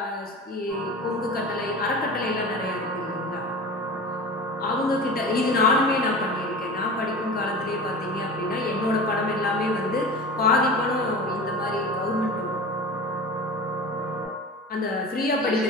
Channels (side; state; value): both; normal; correlation 0.34